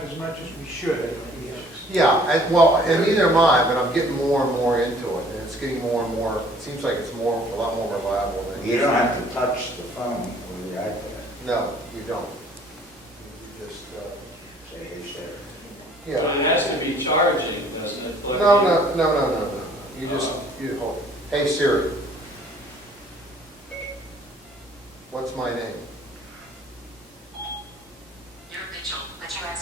as much as we should, I think. Yeah, and neither am I, but I'm getting more and more into it, and it's getting more and more, it seems like it's a lot more reliable than. You don't have to touch the phone with the iPad. No, you don't. You just, Say, hey, Sarah. yeah. But it has to be charging, doesn't it? Plug No, in? no. You just, you hold, hey Siri, what's my name? You're Mitchell, but you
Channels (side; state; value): both; normal; correlation 0.56